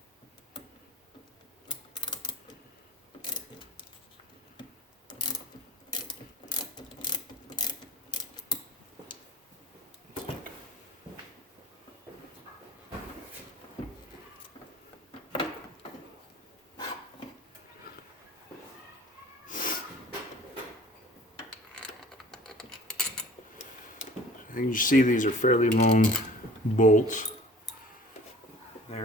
And you see these are fairly long bolts.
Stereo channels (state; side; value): normal; both; correlation 0.45